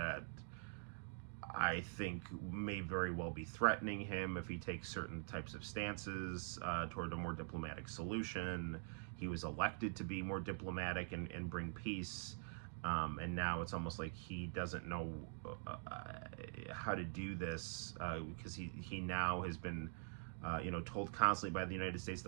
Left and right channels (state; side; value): silent; left; digital silence